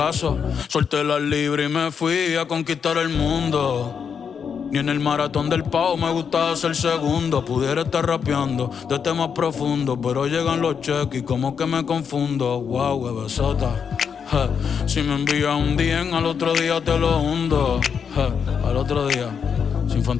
Solté la libre y me fui a conquistar el mundo. Ni en el maratón del pavo me gustaba ser segundo. Pudiera estar rapeando de temas profundos, pero llegan los cheques y como que me confundo. Wow, bebesota. Si me envías un DM, al otro día te lo hundo. Al otro día, sin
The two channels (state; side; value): quieter; right; 6.8 dB